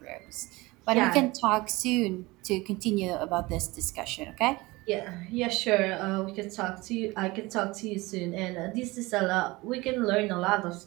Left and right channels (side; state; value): left; quieter; 21.9 dB